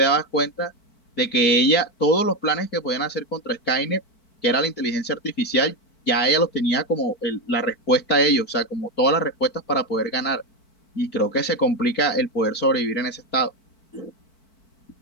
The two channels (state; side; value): late; right; 4.5 ms